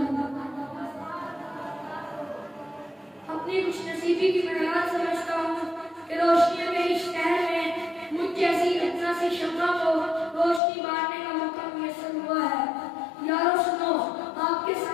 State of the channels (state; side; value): drops out; right; at 10.6 s